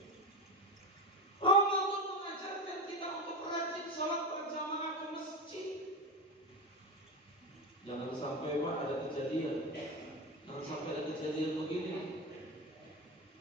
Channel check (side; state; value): both; normal; correlation 0.20